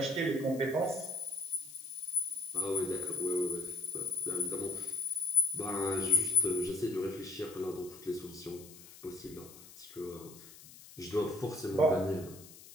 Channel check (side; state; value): left; noise; hiss, 18 dB below the sound